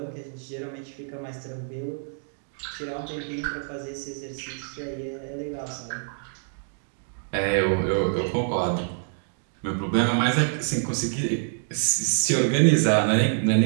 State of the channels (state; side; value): silent; left; digital silence